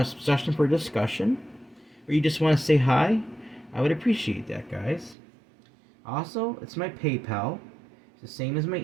suggestion for a discussion? or you just want to say hi, I would appreciate that, guys. Also, it's my PayPal. It's the same as my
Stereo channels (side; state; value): left; drops out; at 5.2 s